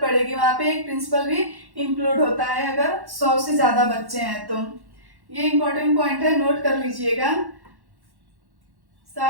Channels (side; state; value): left; late; 1.1 ms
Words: पड़ेगी, वहां पे एक प्रिंसिपल भी इंक्लूड होता है अगर 100 से ज्यादा बच्चे हैं तो। ये इंपॉर्टेंट पॉइंट है, नोट कर लीजिएगा।